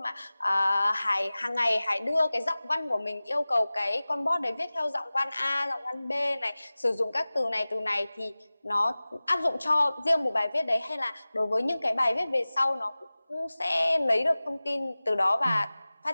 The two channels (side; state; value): both; inverted; correlation -0.98